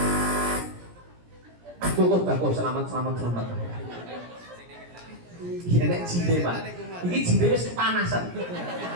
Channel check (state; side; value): late; left; 17 ms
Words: Bagus, selamat. Iya nek jinde Pak. Iki jinde wis kepanasan.